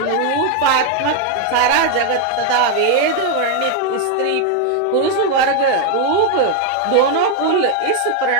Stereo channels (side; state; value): both; different; correlation 0.01